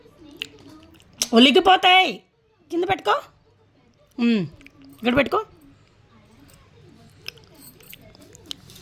ఒలిగిపోతాయి, కింద పెట్టుకో, ఇక్కడ పెట్టుకో.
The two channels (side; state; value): both; identical; correlation 1.00